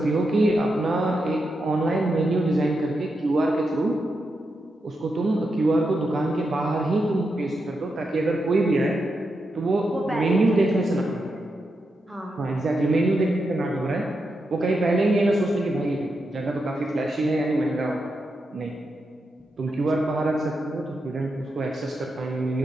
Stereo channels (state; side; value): normal; both; correlation 0.86